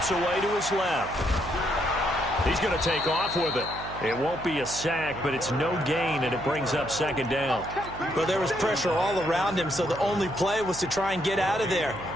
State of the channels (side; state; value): right; noise; hum, 13 dB below the sound